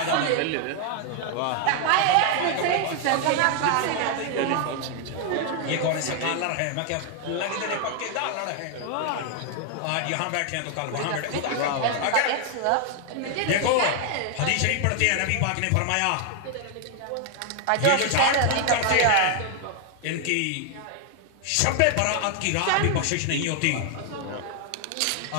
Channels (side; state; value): both; different; correlation 0.00